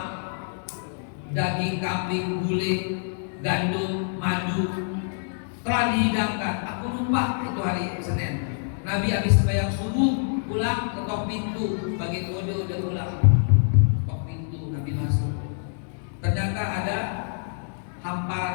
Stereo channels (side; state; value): right; silent; digital silence